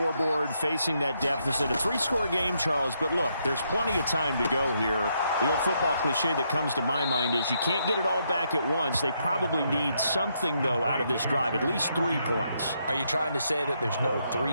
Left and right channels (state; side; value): inverted; both; correlation -0.77